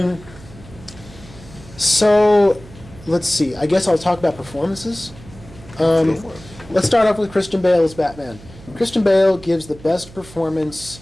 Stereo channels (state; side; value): noise; right; hum, 19 dB below the sound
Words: So, let's see. I guess I'll talk about performances. Let's start off with Christian Bale as Batman. Christian Bale gives the best performance